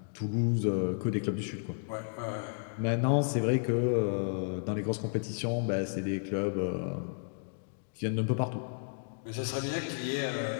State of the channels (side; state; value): right; silent; digital silence